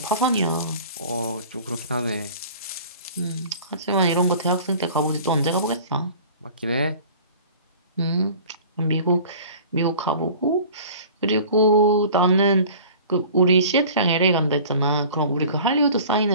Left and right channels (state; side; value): inverted; both; correlation -0.44